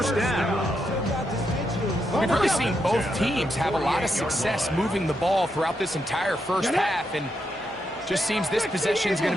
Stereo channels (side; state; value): both; normal; correlation 0.82